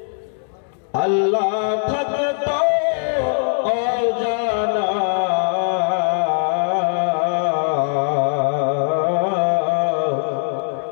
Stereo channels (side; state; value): right; silent; 66 dB below the other